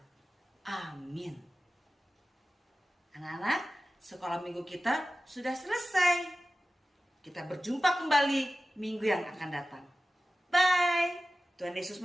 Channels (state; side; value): normal; both; correlation 0.95